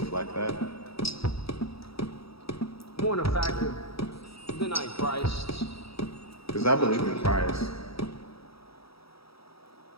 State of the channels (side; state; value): right; late; 0.76 ms